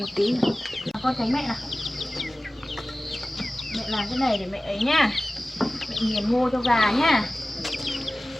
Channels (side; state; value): both; normal; correlation 0.97